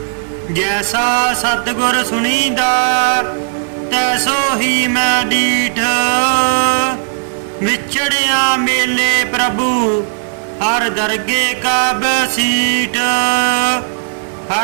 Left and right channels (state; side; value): silent; left; digital silence